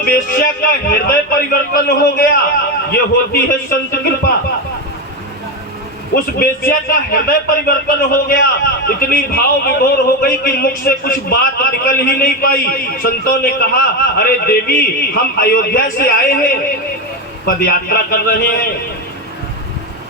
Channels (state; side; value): normal; both; correlation 0.14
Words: वेश्या का हृदय परिवर्तन हो गया। ये होती है संत कृपा। उस वेश्या का हृदय परिवर्तन हो गया, इतनी भाव विभोर हो गई कि मुख से कुछ बात निकल ही नहीं पाई। संतों ने कहा, अरे देवी हम अयोध्या से आए हैं, पद यात्रा कर रहे हैं,